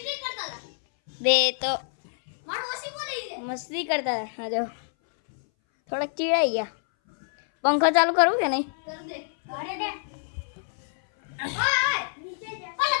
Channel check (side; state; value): right; silent; 59 dB below the other